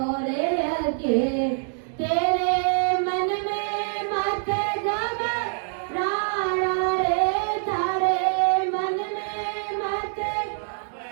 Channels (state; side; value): silent; left; digital silence